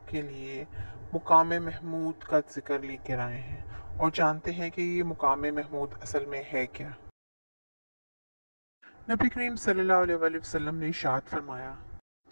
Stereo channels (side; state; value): both; inverted; correlation -1.00